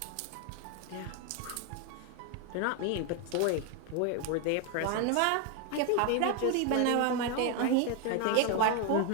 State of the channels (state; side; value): different; both; correlation 0.01